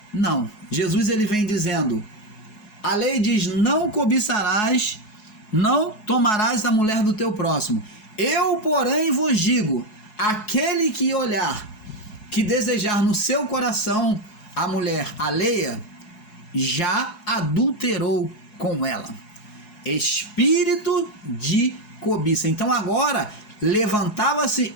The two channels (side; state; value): right; late; 4.7 ms